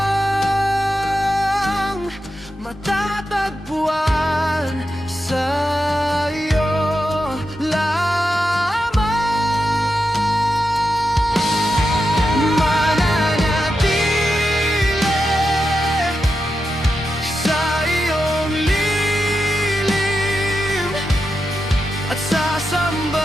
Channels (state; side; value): normal; both; correlation 0.88